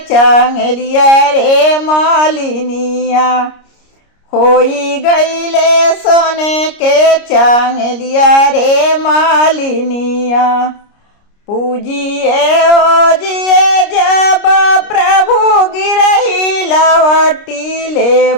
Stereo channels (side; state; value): right; late; 29 ms